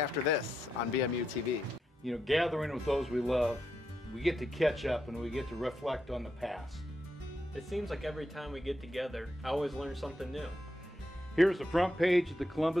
this on BMU TV. You know, gathering with those we love, we get to catch up and we get to reflect on the past. It seems like every time we get together, I always learn something new. Here's the front page of the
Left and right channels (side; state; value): both; normal; correlation 0.84